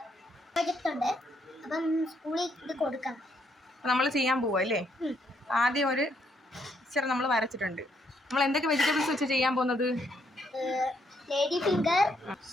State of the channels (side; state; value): both; normal; correlation 0.73